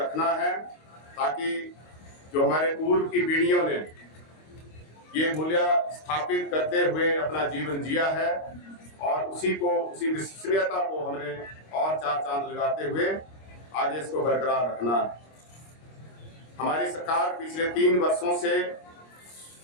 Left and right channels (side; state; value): right; late; 25 ms